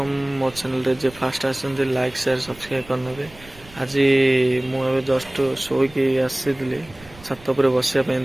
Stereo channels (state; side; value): noise; right; rumble, 22 dB below the sound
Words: मो चैनल रे जे फास्ट आछन लाइक शेयर सब्सक्राइब करनेबे। आज मु एबे जस्ट शोइकी आसीली छत पर बसिया पे